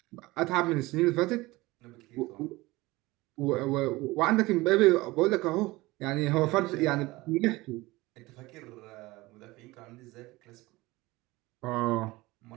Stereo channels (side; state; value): left; quieter; 20.6 dB